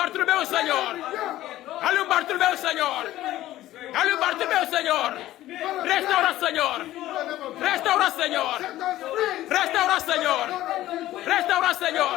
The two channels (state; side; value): quieter; right; 14.8 dB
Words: Senhor. Olha o Bartolomeu, Senhor. Olha o Bartolomeu, Senhor. Restaura, Senhor. Restaura, Senhor. Restaura, Senhor. Restaura,